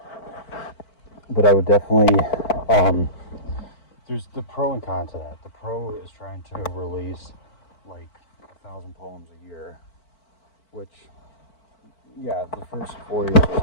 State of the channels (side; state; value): right; late; 4.5 ms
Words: But I would definitely, there's the pro and con to that. The pro is trying to release like 1,000 poems a year, which, yeah, the first 4 years is